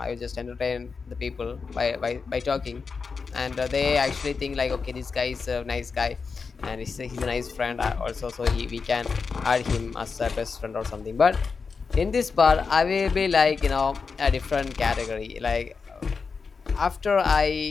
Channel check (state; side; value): quieter; right; 5.1 dB